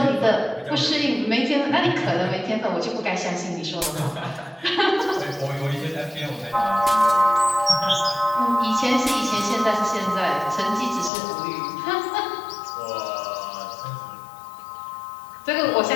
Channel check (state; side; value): drops out; right; at 11.1 s